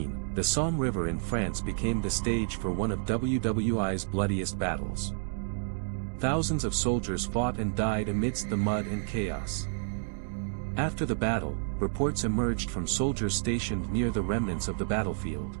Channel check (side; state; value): left; silent; digital silence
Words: the Somme River in France became the stage for one of WWI's bloodiest battles. Thousands of soldiers fought and died amidst the mud and chaos. After the battle, reports emerged from soldiers stationed near the remnants of the battlefield.